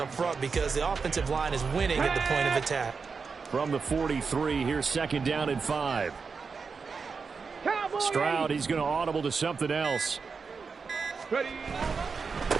front because the offensive line is winning at the point of attack. From the 43, here's 2nd down and 5. Stroud, he's going to audible to something else. Ready?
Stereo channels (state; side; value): quieter; left; 5.1 dB